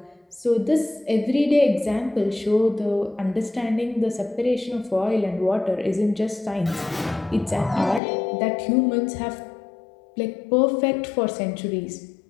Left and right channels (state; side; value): drops out; right; at 8.0 s